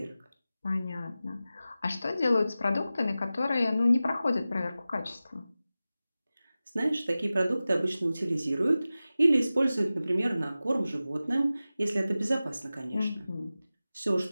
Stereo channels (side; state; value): both; inverted; correlation -0.95